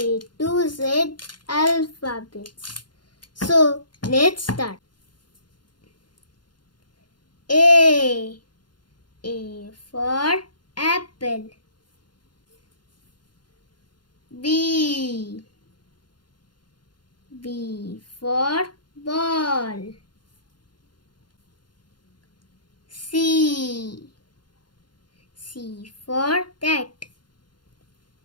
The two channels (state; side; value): late; right; 0.71 ms